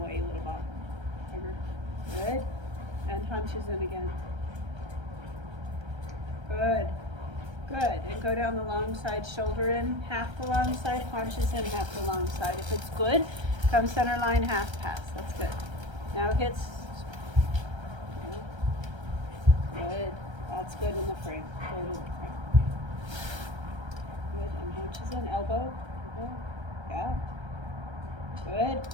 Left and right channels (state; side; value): late; left; 1.3 ms